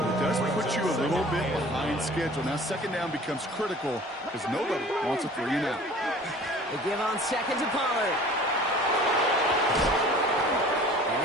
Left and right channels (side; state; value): both; normal; correlation 0.46